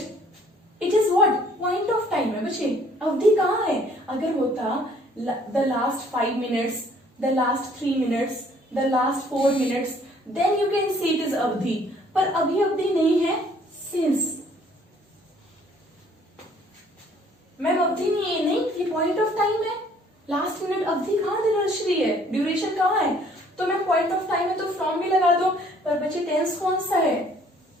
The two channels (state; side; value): normal; both; correlation 0.59